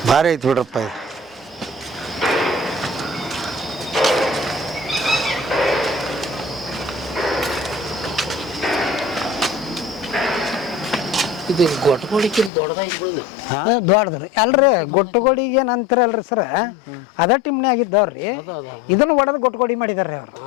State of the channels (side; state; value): right; drops out; at 12.5 s